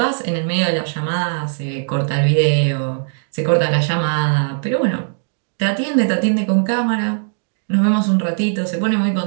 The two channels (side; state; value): left; silent; digital silence